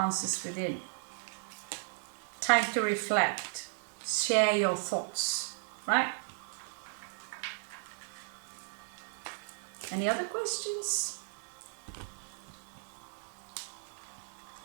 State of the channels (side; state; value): left; silent; digital silence